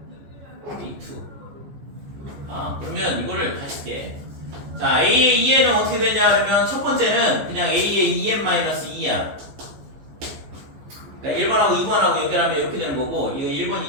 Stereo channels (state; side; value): late; left; 14 ms